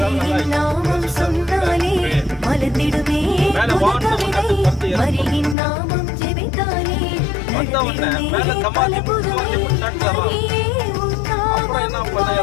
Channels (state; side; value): drops out; right; at 5.6 s